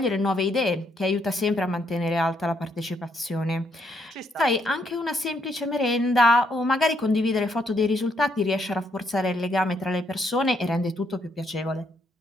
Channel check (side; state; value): both; normal; correlation 0.74